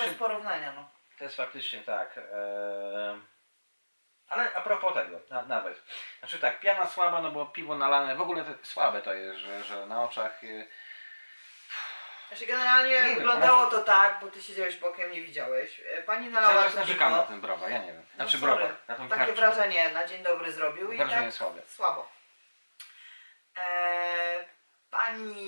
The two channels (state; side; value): inverted; both; correlation -1.00